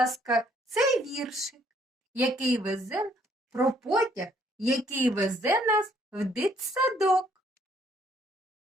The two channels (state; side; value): normal; both; correlation 0.66